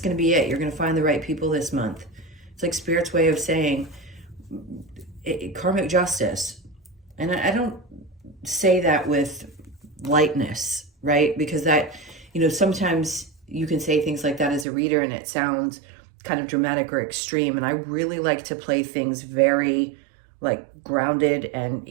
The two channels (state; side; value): drops out; left; at 14.7 s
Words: to be it. You're going to find the right people this month. It's like Spirit's way of saying karmic justice. And I don't say that with lightness, right? Because that, sometimes you can say things like that as a reader and it sounds kind of dramatic or extreme. And I really like to play things very grounded and